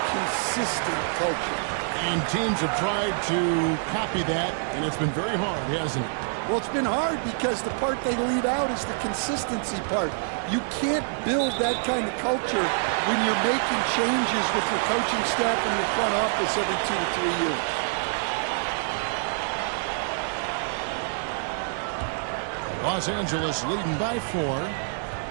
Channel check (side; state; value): left; silent; 61 dB below the other